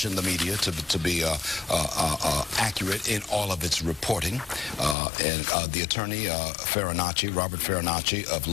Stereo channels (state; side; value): drops out; right; at 5.0 s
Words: the media to be accurate in all of its reporting. And the attorney, Robert Farinacci of